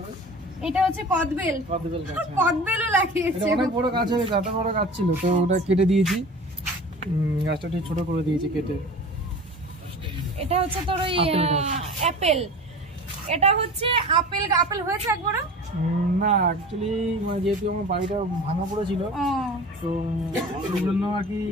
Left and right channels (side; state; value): both; normal; correlation 0.38